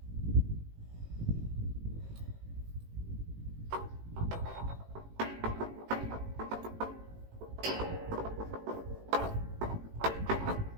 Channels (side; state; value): left; late; 18 ms